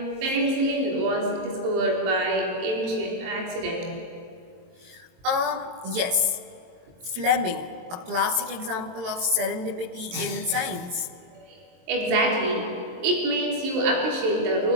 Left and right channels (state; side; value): late; left; 22 ms